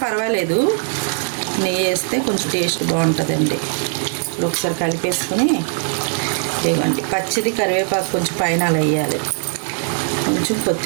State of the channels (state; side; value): silent; left; 55 dB below the other